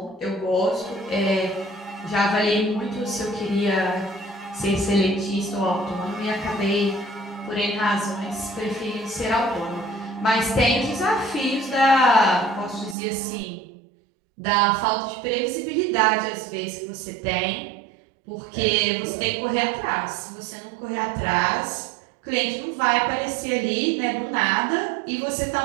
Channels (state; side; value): drops out; left; at 13.0 s